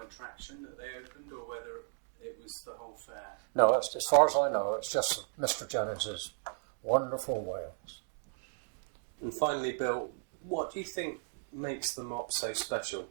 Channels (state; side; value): silent; left; digital silence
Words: attraction that they opened, or whether it was the whole fair? No, as far as I know, it's just Mr. Jennings's Wonderful Wales. And finally, Bill, what do you think makes the mop so